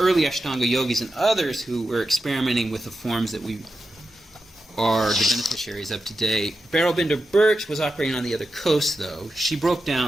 Ashtanga yogis and others who were experimenting with the forms that we are the beneficiaries of today. Beryl Binder Birch was operating on the other coast, though. She broke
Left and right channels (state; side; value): normal; both; correlation 0.90